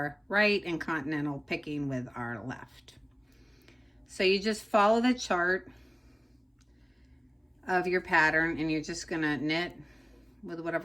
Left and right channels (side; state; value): both; identical; correlation 1.00